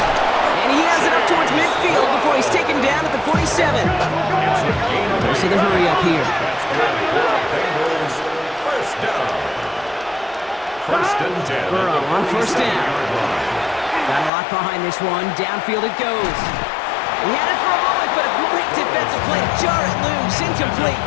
he has it up towards midfield before he's taken down at the 47. Goes to the hurry up here. Bengals first down. First and 10. Burrow on first down. Got a lot behind this one. Downfield it goes. He had it for a moment, but a great defensive play to jar it loose.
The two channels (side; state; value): right; drops out; at 14.3 s